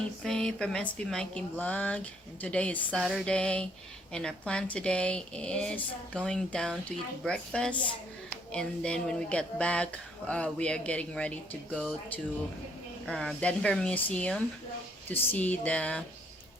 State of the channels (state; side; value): normal; both; correlation 0.67